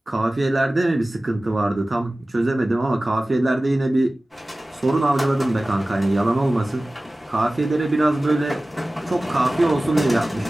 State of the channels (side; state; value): both; normal; correlation 0.97